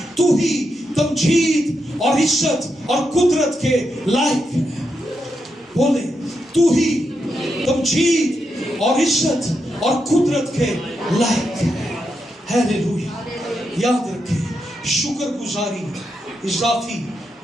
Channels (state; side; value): normal; both; correlation 0.84